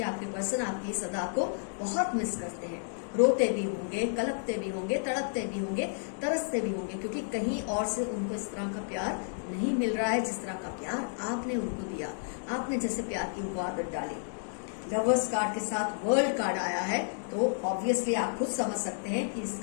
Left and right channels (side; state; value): right; silent; digital silence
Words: आपके पर्सन आपकी इस अदा को बहुत मिस करते हैं। रोते भी होंगे, कलपते भी होंगे, तड़पते भी होंगे, तरसते भी होंगे, क्योंकि कहीं और से उनको इस तरह का प्यार नहीं मिल रहा है जिस तरह का प्यार आपने उनको दिया। आपने जैसे प्यार की वो आदत डाली। लवर्स कार्ड के साथ वर्ल्ड कार्ड आया है, तो ऑब्वियसली आप खुद समझ सकते हैं कि